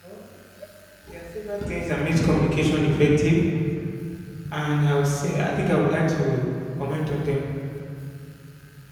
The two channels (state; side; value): identical; both; correlation 1.00